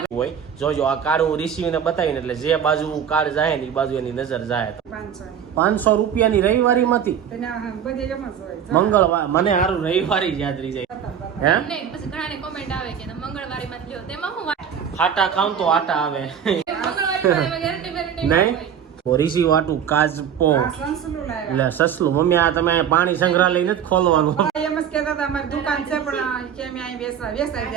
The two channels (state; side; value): quieter; left; 8.4 dB